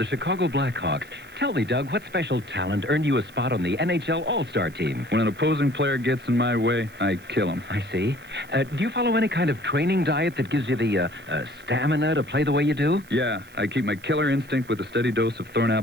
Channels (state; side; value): noise; right; hiss, 26 dB below the sound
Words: Chicago Blackhawks. Tell me, Doug, what special talent earned you a spot on the NHL All-Star team? When an opposing player gets in my way, I kill him. I see. Do you follow any kind of training diet that gives you the stamina to play the way you do? Yeah, I keep my killer instinct with a steady dose of